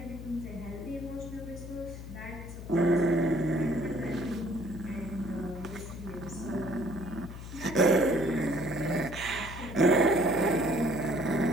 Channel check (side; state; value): left; noise; hum, 11 dB below the sound